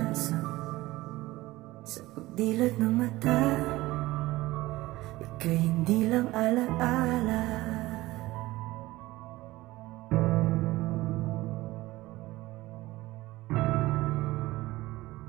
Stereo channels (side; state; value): left; quieter; 18.5 dB